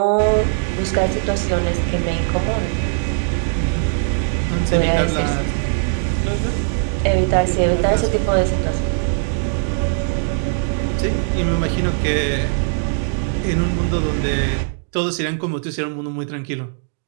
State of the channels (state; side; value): silent; left; digital silence